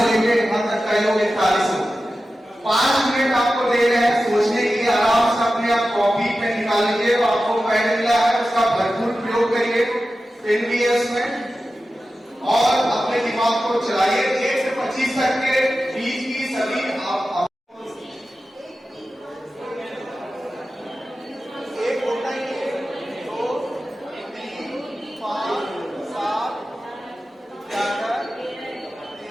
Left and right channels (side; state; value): both; normal; correlation 0.94